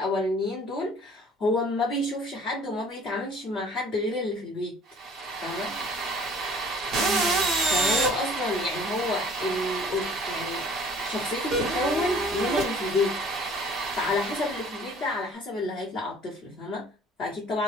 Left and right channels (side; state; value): both; normal; correlation 0.52